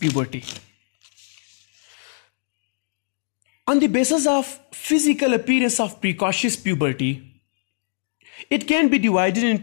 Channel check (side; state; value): right; silent; digital silence